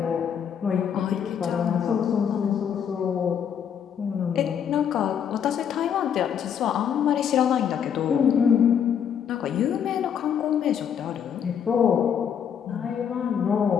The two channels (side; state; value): right; quieter; 8.1 dB